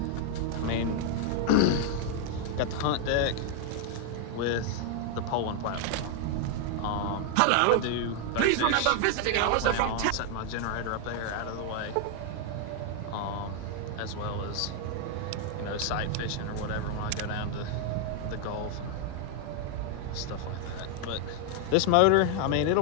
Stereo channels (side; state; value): both; different; correlation 0.00